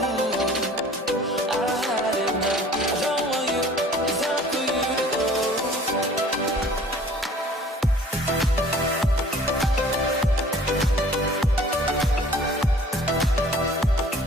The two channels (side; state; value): both; normal; correlation 0.50